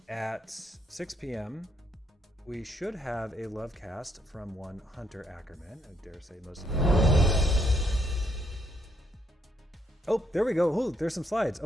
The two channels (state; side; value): normal; both; correlation 0.73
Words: at 6 p.m., we should have a love cast from one Hunter Ackerman. I dare say most of them. Oh, there we go. Oh, there's some slides.